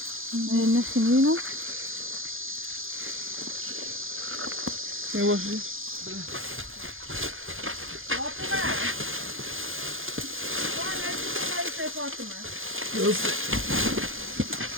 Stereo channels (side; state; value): left; late; 0.59 ms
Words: Nesiniino? يواش يوصل